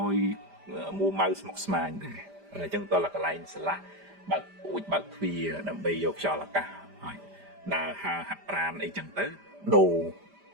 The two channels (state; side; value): late; left; 5.0 ms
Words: យមួម៉ៅស្មុគស្មាញដែរអញ្ចឹងតើកន្លែងស្រឡះបើកពូជបើកទ្វារដើម្បីយកខ្យល់អាកាសហើយដើរហើរហាត់ប្រាណអីចឹងទៅដូ